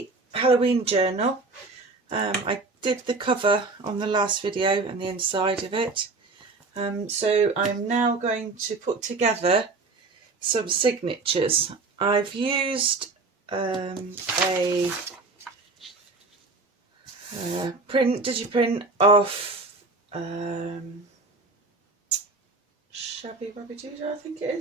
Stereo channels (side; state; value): left; quieter; 3.7 dB